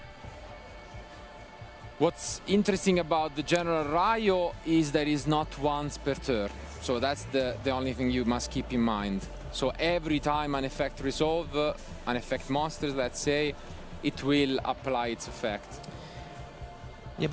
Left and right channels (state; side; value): identical; both; correlation 1.00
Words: What's interesting about the General Rayo is that it's not once per turn. So that's the only thing you must keep in mind. So every time an effect resolve, an effect monsters, let's say, it will apply its effect. Yeah,